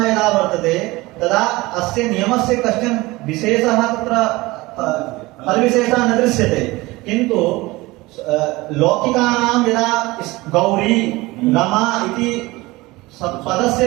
यदा वर्तते तदा अस्य नियमस्य कश्चन विशेषः तत्र फलविशेषः न दृश्यते किन्तु लौकिकानां यदा गौरी रमा इति पदस्य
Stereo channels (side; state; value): left; quieter; 20.9 dB